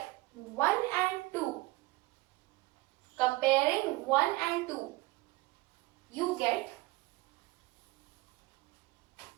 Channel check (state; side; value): quieter; left; 21.5 dB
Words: 1 and 2, comparing 1 and 2, you get